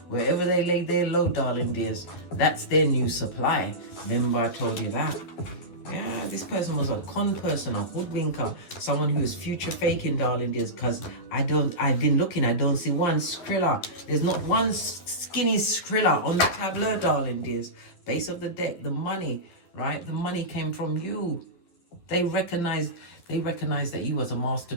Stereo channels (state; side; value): late; right; 11 ms